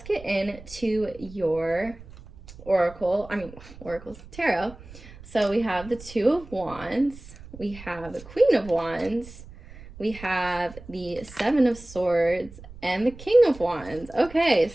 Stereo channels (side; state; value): right; noise; rumble, 18 dB below the sound